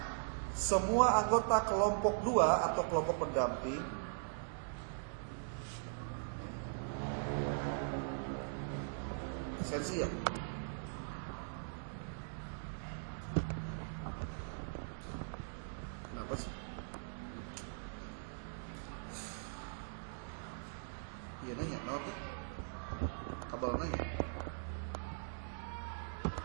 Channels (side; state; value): left; silent; digital silence